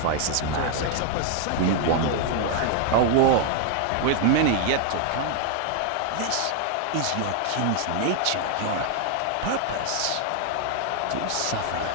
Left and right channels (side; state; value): both; different; correlation 0.00